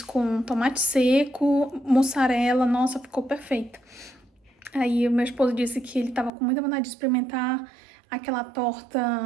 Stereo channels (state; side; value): drops out; left; at 6.3 s